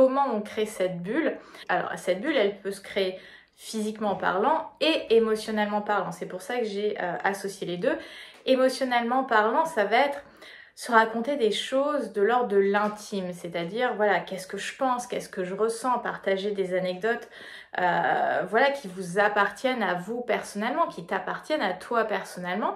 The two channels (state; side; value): identical; both; correlation 1.00